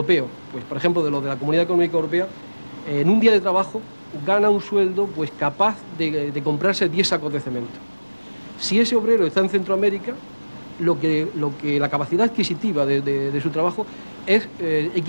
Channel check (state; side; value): inverted; both; correlation -1.00